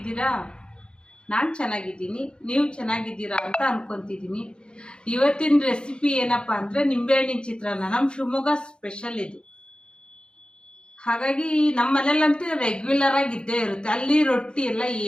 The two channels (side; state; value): right; late; 0.051 ms